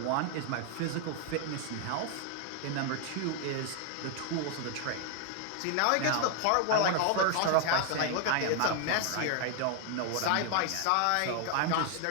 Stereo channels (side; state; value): both; different; correlation 0.00